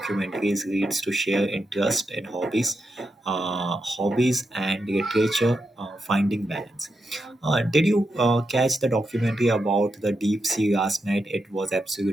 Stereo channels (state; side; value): normal; both; correlation 0.86